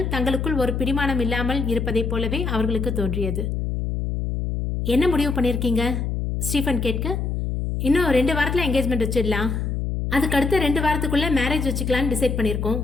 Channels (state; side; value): noise; left; hum, 1 dB below the sound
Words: தங்களுக்குள் ஒரு பிடிமானம் இல்லாமல் இருப்பதைப் போலவே அவர்களுக்கு தோன்றியது. என்ன முடிவு பண்ணிருக்கீங்க? ஸ்டீஃபன் கேட்க, இன்னும் 2 வாரத்துல என்கேஜ்மெண்ட் வச்சிடலாம். அதுக்கு அடுத்த 2 வாரத்துக்குள்ள மேரேஜ் வச்சுக்கலான்னு டிசைட் பண்ணியிருக்கோம்.